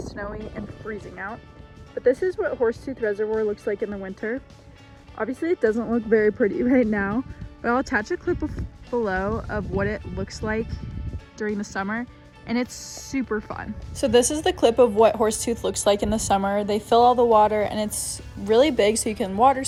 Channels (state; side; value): identical; both; correlation 1.00